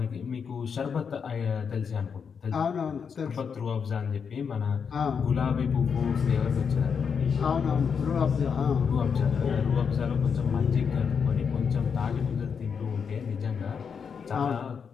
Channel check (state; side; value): quieter; right; 6.4 dB